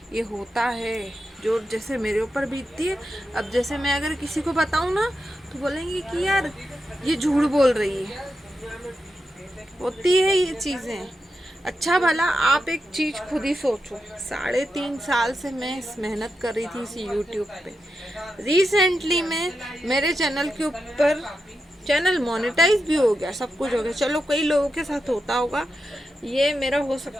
ये होता है जो जैसे मेरे ऊपर बीतती है। अब जैसे मैं अगर किसी को बताऊँ ना तो बोलेंगे कि यार ये झूठ बोल रही है, होती है ये चीज़ें। अच्छा भला आप एक चीज़ खुद ही सोचो, 3.5 साल से मैं इस मेहनत कर रही थी इस यूट्यूब पे। रिसेंटली में मेरे चैनल के ऊपर चैनल मोनेटाइज भी हो गया, सब कुछ हो गया। चलो कई लोगों के साथ होता होगा, ये मेरा हो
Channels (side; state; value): both; normal; correlation 0.88